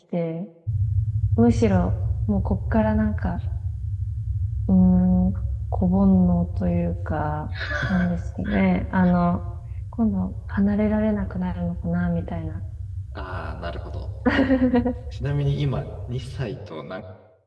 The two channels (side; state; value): both; identical; correlation 1.00